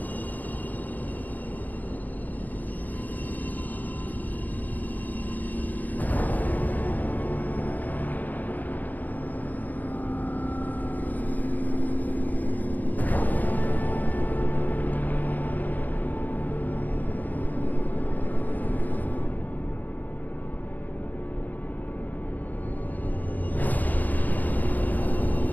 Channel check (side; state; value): right; late; 0.084 ms